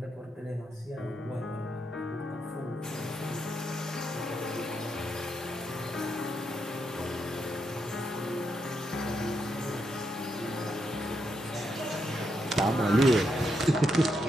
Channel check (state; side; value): normal; both; correlation 0.81